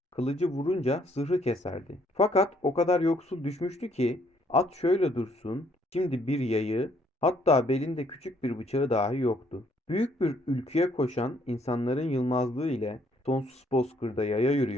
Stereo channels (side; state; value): both; normal; correlation 0.66